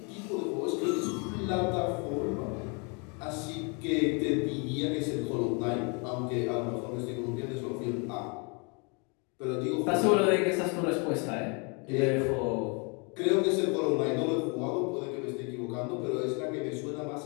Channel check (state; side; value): quieter; right; 33.9 dB